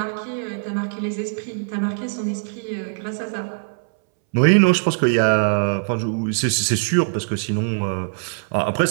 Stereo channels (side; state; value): left; silent; 62 dB below the other